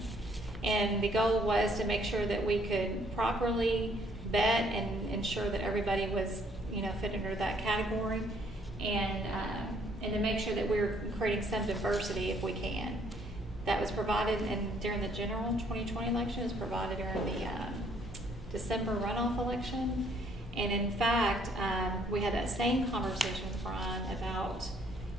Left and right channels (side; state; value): both; normal; correlation 0.65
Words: And the goal was to make sure that we could properly vet and ensure that everybody was, fit under that category, and to make sure that we're creating some diversity if we can. That was provided during the general 2020 election. It was provided during the December runoff election. And in fact, we had that same conversation with Brian about,